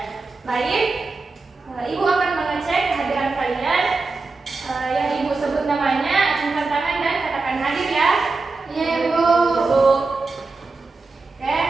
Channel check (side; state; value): left; quieter; 3.8 dB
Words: baik. Ibu akan mengecek kehadiran kalian. Yang Ibu sebut namanya, acungkan tangan dan katakan hadir ya. Iya, Bu. Ibu. Oke.